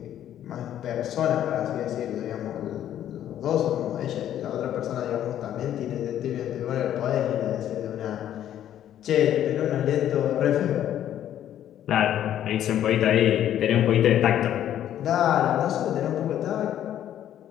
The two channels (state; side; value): quieter; right; 11.1 dB